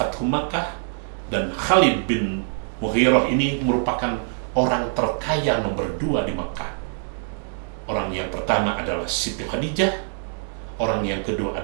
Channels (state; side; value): silent; left; 60 dB below the other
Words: Makkah, dan Khalid bin Mughirah ini merupakan orang terkaya nomor 2 di Makkah. Orang yang pertama adalah Siti Khadijah, orang yang kedua